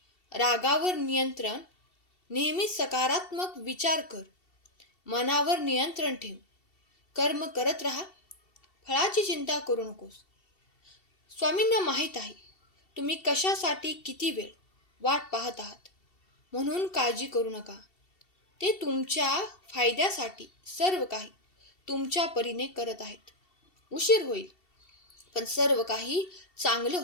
रागावर नियंत्रण, नेहमी सकारात्मक विचार कर. मनावर नियंत्रण ठेव. कर्म करत राहा. फळाची चिंता करू नकोस. स्वामींना माहीत आहे तुम्ही कशासाठी किती वेळ वाट पाहत आहात, म्हणून काळजी करू नका. ते तुमच्या फायद्यासाठी सर्व काही तुमच्या परीने करत आहेत. उशीर होईल, पण सर्व काही चांगलं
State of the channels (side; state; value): right; late; 2.7 ms